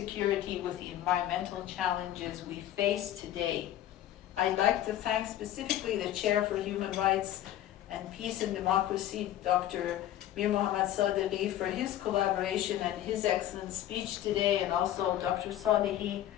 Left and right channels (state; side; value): quieter; right; 12.6 dB